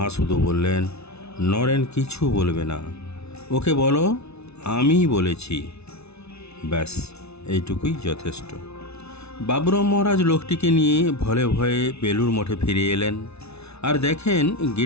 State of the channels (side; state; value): right; late; 0.80 ms